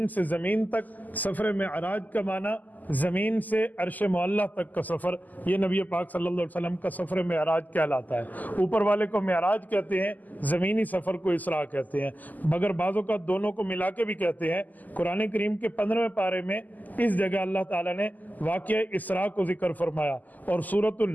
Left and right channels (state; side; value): late; right; 0.082 ms